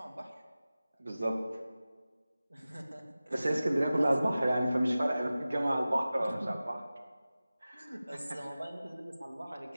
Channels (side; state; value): both; inverted; correlation -0.97